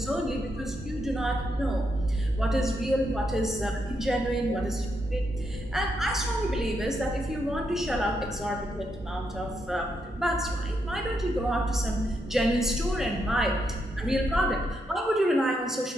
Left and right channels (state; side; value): normal; both; correlation 0.80